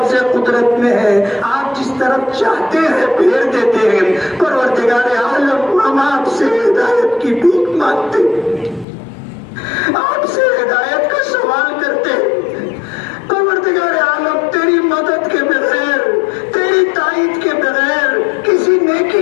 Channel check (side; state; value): right; drops out; at 8.8 s